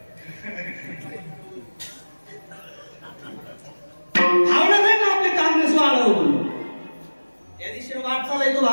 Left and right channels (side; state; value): both; inverted; correlation -1.00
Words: भावना नाही ना आपली काँग्रेस वाढावं म्हणून त्या दिवशी वाटचाल आहे तो